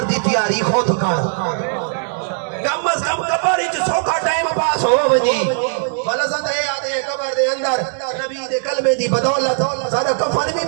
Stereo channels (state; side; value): silent; left; digital silence